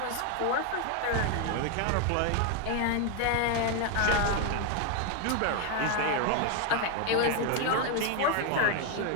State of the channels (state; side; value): different; both; correlation 0.01